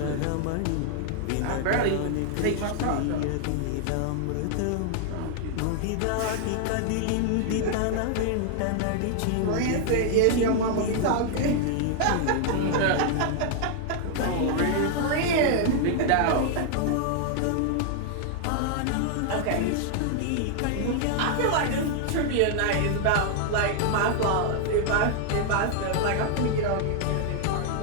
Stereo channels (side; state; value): both; different; correlation 0.00